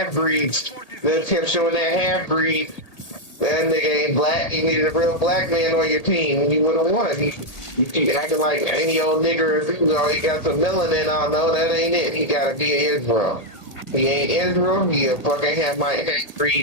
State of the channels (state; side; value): late; right; 1.8 ms